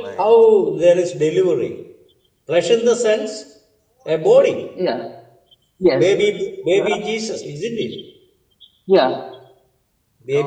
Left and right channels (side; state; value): both; identical; correlation 1.00